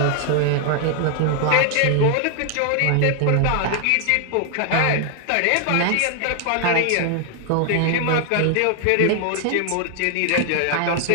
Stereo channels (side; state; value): both; different; correlation 0.00